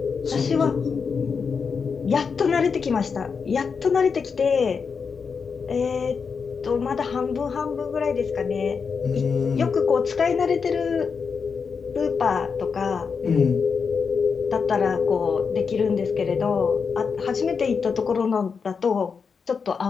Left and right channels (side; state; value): right; quieter; 5.7 dB